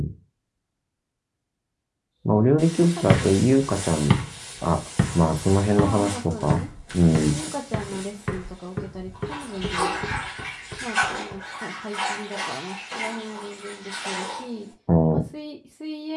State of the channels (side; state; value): both; identical; correlation 1.00